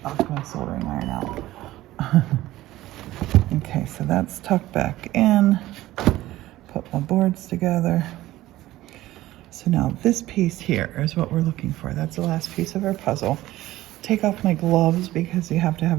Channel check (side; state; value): left; quieter; 16.1 dB